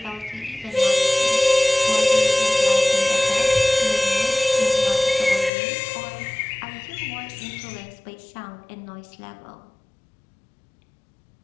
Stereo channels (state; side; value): drops out; right; at 5.5 s